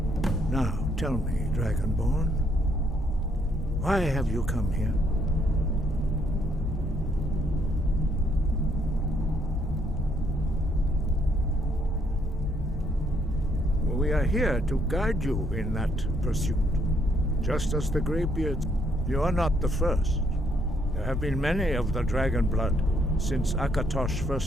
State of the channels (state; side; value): normal; both; correlation 0.71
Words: Now, tell me, Dragonborn, why have you come here? We are here to guide you in that pursuit. Just as the Greybeards, you are not the first. There have been many of the dragon blood since Akatosh